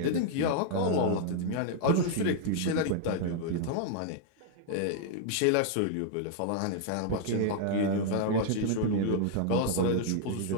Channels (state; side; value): different; both; correlation 0.00